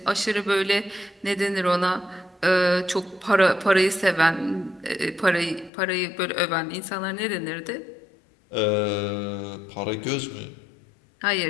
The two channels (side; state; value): right; drops out; at 5.7 s